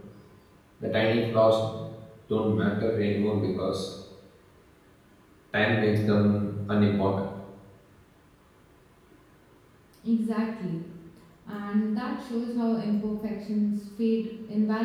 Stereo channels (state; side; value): identical; both; correlation 1.00